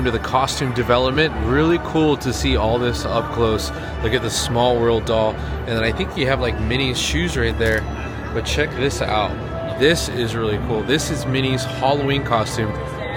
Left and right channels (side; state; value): both; identical; correlation 1.00